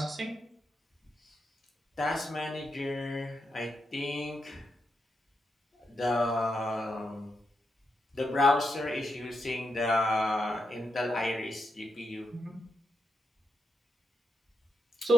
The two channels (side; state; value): both; normal; correlation 0.84